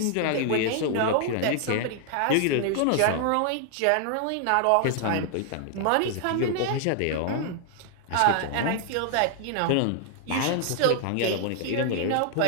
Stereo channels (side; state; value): both; different; correlation 0.00